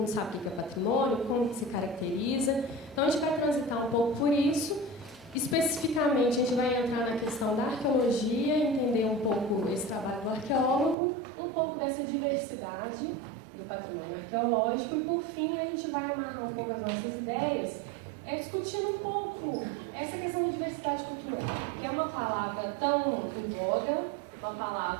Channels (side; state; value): left; drops out; at 11.0 s